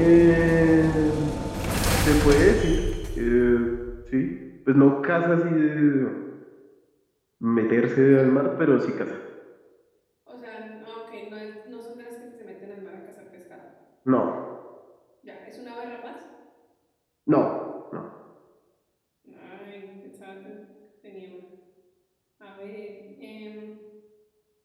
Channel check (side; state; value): both; identical; correlation 1.00